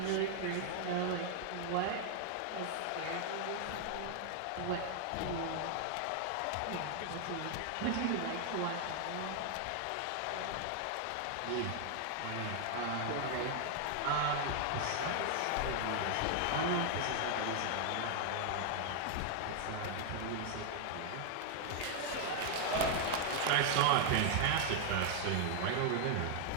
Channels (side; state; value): both; different; correlation 0.00